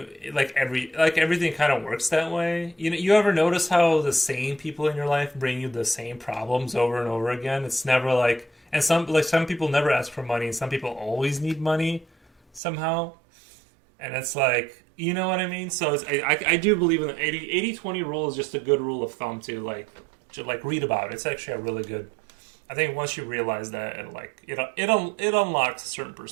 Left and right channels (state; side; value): drops out; left; at 12.6 s